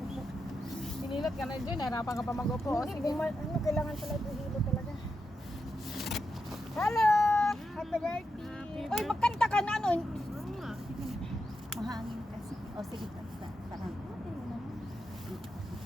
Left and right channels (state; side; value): normal; both; correlation 0.86